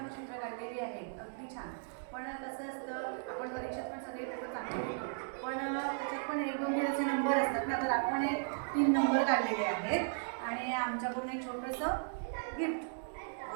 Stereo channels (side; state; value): left; silent; digital silence